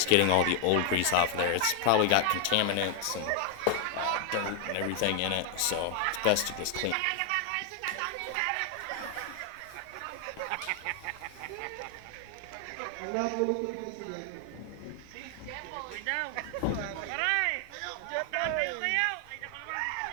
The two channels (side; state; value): both; different; correlation 0.00